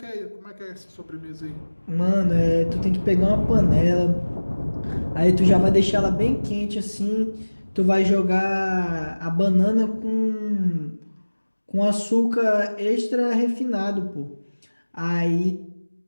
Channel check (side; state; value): both; inverted; correlation -1.00